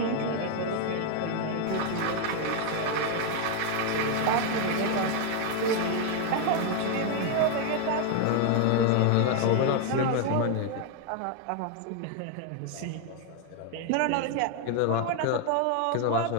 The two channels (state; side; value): different; both; correlation 0.01